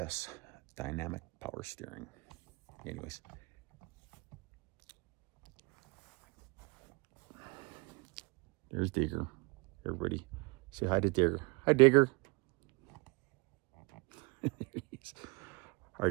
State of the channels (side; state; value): left; quieter; 27.4 dB